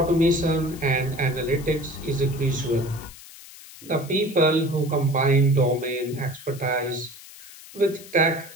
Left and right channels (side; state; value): left; noise; hiss, 18 dB below the sound